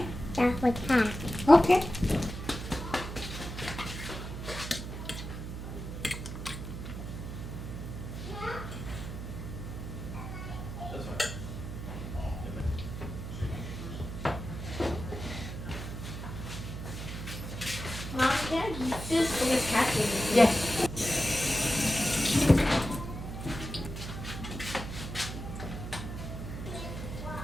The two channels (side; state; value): right; noise; hum, 7 dB below the sound